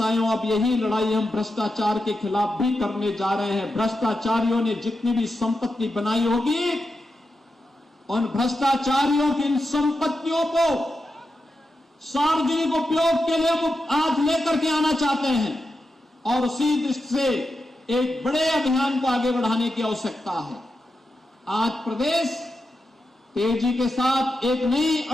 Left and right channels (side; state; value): both; normal; correlation 0.88